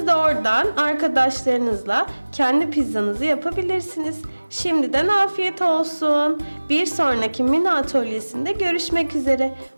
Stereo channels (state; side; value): inverted; both; correlation -1.00